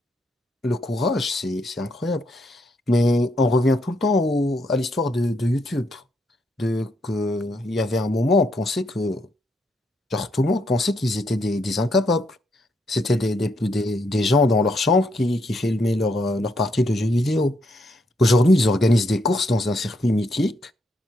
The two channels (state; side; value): normal; both; correlation 0.76